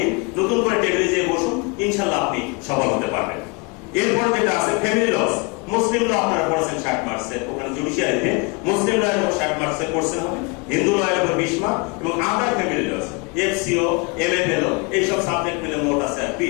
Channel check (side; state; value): right; quieter; 30.0 dB